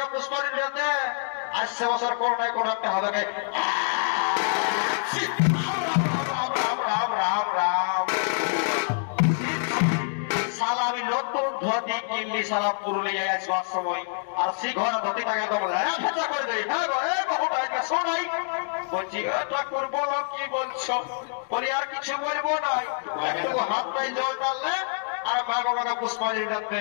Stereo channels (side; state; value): right; silent; digital silence